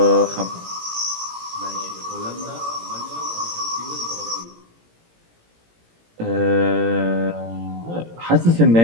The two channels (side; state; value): left; late; 18 ms